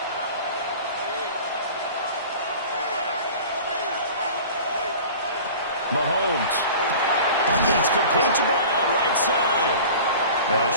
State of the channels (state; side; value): inverted; both; correlation -0.40